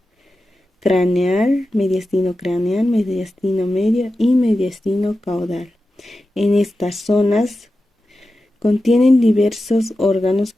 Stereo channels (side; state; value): both; normal; correlation 0.92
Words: craneal, mediastino medio y mediastino caudal. En estas zonas contienen diversos órganos